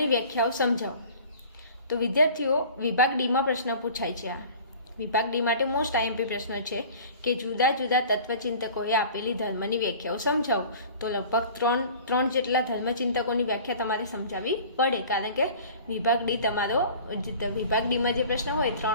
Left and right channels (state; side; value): inverted; both; correlation -0.44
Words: વ્યાખ્યાઓ સમજાવો. તો વિદ્યાર્થીઓ, વિભાગ ડીમાં પ્રશ્ન પૂછાય છે. આ વિભાગ ડી માટે મોસ્ટ આઈએમપી પ્રશ્ન છે કે જુદા જુદા તત્વચિંતકોએ આપેલી ધર્મની વ્યાખ્યાઓ સમજાવો. તો લગભગ ત્રણ જેટલા ધર્મચિંતકોની વ્યાખ્યા તમારે સમજાવવી પડે, કારણ કે વિભાગ ડી તમારો વિભાગ ડીમાં જે પ્રશ્ન હોય